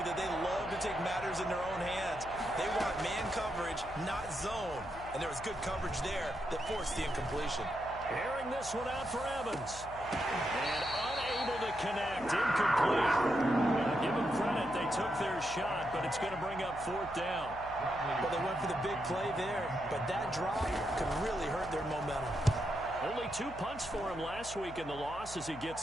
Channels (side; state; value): left; noise; hum, 15 dB below the sound